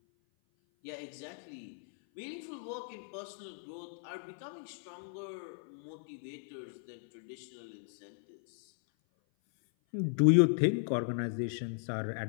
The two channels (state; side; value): silent; right; 54 dB below the other